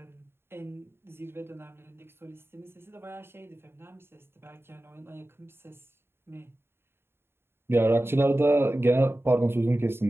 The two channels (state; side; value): late; left; 0.11 ms